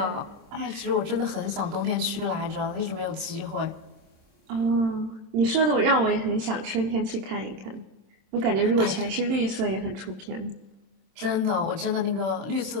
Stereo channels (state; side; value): late; left; 26 ms